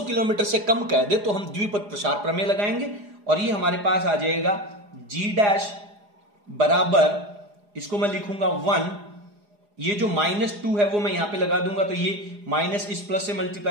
किलोमीटर से कम कह दे तो हम द्विपद प्रसार प्रमेय लगाएंगे, और ये हमारे पास आ जाएगा जी डैश बराबर, इसको मैं लिखूंगा 1 ये जो -2 है वो मैं यहां पे लगा दूंगा, तो ये माइनस इस प्लस से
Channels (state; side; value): late; left; 4.9 ms